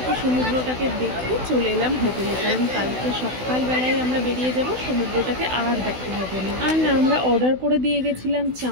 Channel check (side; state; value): left; late; 16 ms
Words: সমুদ্রটাকে দেখে চলে এলাম হোটেলে, কারণ কালকে সকালবেলায় আমরা বেরিয়ে যাব, সমুদ্রটাকে আর দেখা হবে না। আর না, আমরা অর্ডার করে দিয়ে গেছিলাম